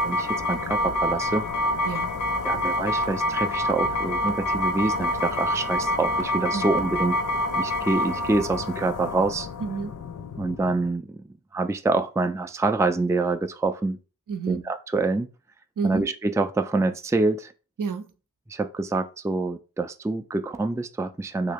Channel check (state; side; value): normal; both; correlation 0.59